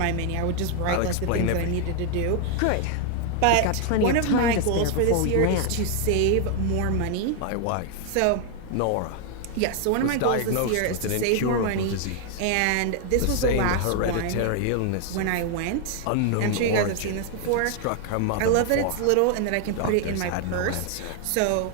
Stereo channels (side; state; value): both; different; correlation 0.00